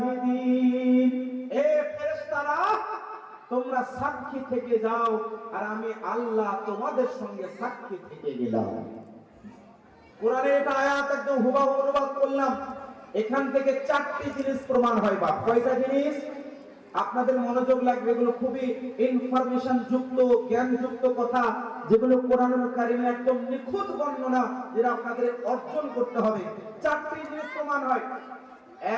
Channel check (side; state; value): both; identical; correlation 1.00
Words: এ ফেরেশতারা তোমরা সাক্ষী থেকে যাও আর আমি আল্লাহ তোমাদের সঙ্গে সাক্ষী থেকে গেলাম। কোরআনের এটা আয়াত একদম হুবহু অনুবাদ করলাম। এখান থেকে চারটি জিনিস প্রমাণ হয়। বা কয়টা জিনিস? আপনাদের মনোযোগ লাগবে, এগুলো খুবই ইনফরমেশন যুক্ত, জ্ঞান যুক্ত কথা, যেগুলো কোরআনুল কারীমে একদম নিখুঁত বর্ণনা, যেটা আপনাদের অর্জন করতে হবে। চারটি জিনিস প্রমাণ হয়।